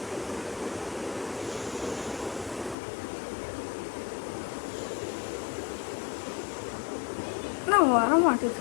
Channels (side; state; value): right; drops out; at 2.8 s